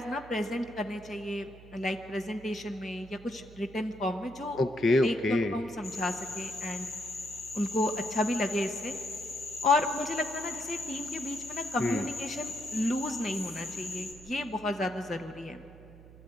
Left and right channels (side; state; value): right; noise; hum, 19 dB below the sound